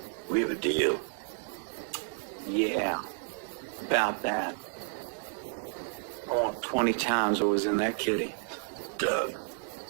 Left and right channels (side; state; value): left; silent; digital silence